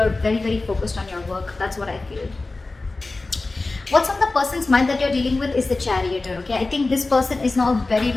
very, very focused on your work. That's what I feel. What's on the person's mind that you're dealing with is the Chariot. Okay, I think this person is now very,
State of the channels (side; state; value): right; quieter; 3.3 dB